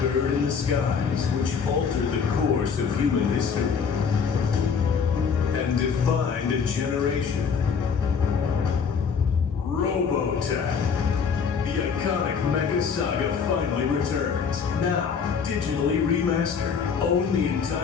in the skies which altered the course of human history and defined a generation. Robotech. The iconic mecha saga finally returns. Now, digitally remastered. Own the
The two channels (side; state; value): right; quieter; 6.2 dB